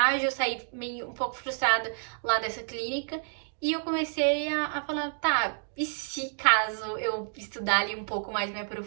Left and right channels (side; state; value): left; silent; digital silence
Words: eu saí meio um pouco frustrada lá dessa clínica, e eu comecei a falar, tá, e se caso eu estudar ali um pouco mais, me